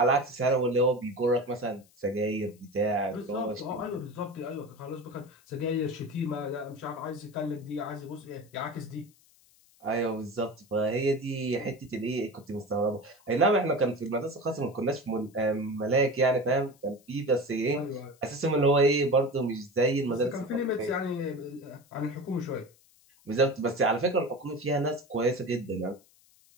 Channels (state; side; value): noise; left; hiss, 30 dB below the sound